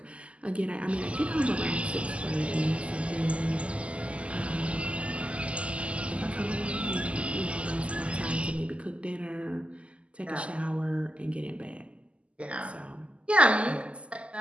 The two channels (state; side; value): late; left; 0.059 ms